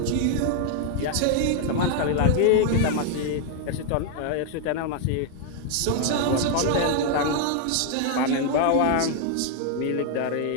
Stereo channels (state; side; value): different; both; correlation 0.00